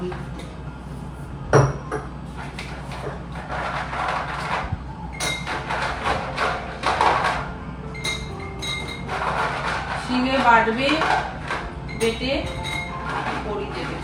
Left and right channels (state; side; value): identical; both; correlation 1.00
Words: দিতে। শিলে বাটবে, বেটে বড়ি দেবে